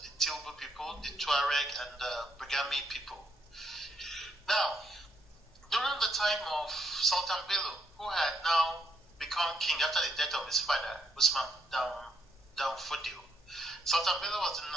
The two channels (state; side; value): normal; both; correlation 0.75